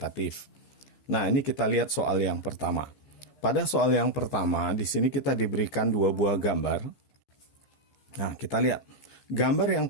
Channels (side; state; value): right; late; 15 ms